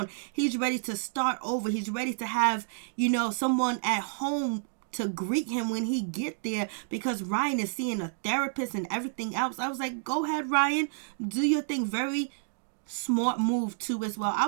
He's ready to start over. He's ready to have, someone at home to greet him when he get there, because Ryan is seeing a therapist and everything else. I was like, go ahead, Ryan. Do your thing. Very smart move too as well. I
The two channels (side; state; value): left; silent; digital silence